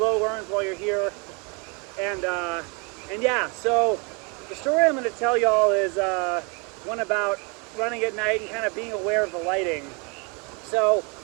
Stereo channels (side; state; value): left; quieter; 32.3 dB